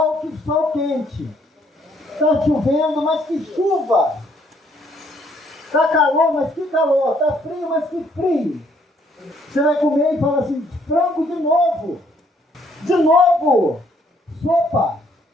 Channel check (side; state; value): both; normal; correlation 0.67